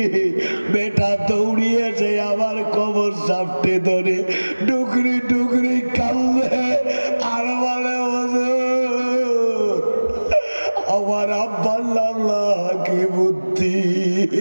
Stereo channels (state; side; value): inverted; both; correlation -1.00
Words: বেটা দৌড়িয়েছে আমার কবর সাপটে ধরে ডুকরি ডুকরি কান্দে আর বলে, আমার আব্বার আল্লাহ কি বুদ্ধি।